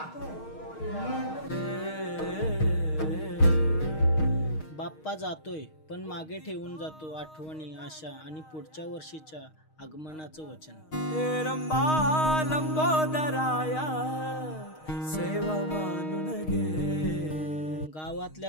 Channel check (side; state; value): right; late; 6.4 ms